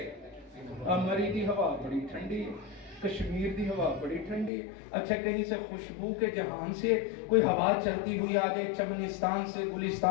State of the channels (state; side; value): drops out; right; at 4.5 s